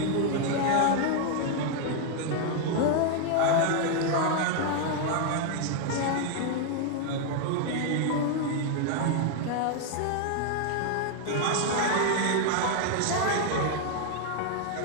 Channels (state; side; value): different; both; correlation 0.00